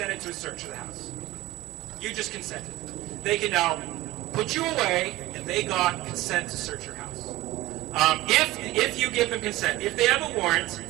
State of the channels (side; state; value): left; quieter; 17.9 dB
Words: to a search of the house. You just consented. They can now put you away, and they got consent to search your house. If you give them consent, if they have a warrant,